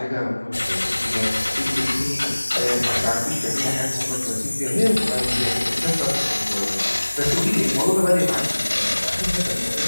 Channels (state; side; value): inverted; both; correlation -1.00